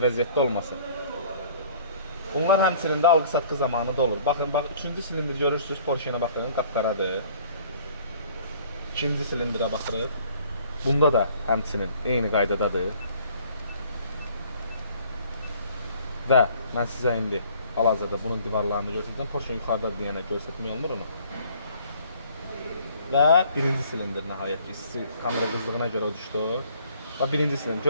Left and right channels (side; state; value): both; inverted; correlation -0.55